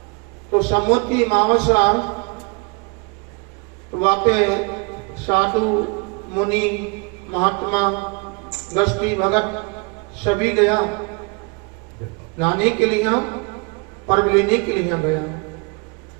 तो समुद्री मावसा वाके साधु मुनि महात्मा गस्ती भगत सभी गया नहाने के लिए, पर्व लेने के लिए गया।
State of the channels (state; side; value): quieter; left; 31.5 dB